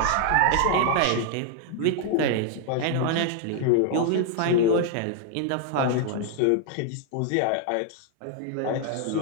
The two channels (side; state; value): both; different; correlation 0.00